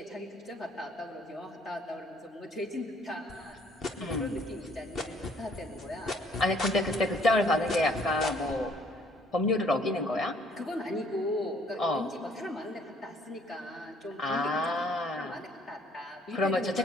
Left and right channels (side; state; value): both; normal; correlation 0.61